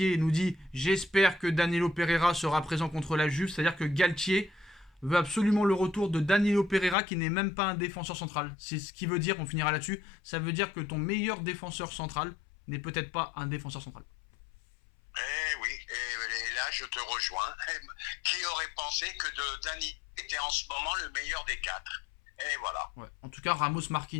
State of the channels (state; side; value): drops out; right; at 7.0 s